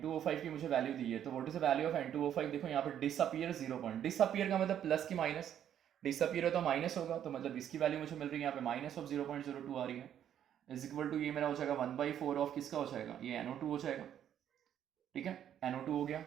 की मुझे वैल्यू दी है, तो what is the value of N2O5, देखो यहाँ पे डिसअपियर 0 पॉइंट, डिसअपियर का मतलब प्लस की माइनस, डिसअपियर है तो माइनस होगा, तो मतलब इसकी वैल्यू मुझे मिल रही है यहाँ पे -0.02 आ रही है, इज इक्वल टू ये मेरा हो जाएगा 1/4 ऑफ किसका हो जाएगा, ये NO2 हो जाएगा, ठीक है, NO2 हो गया।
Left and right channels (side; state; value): left; quieter; 10.0 dB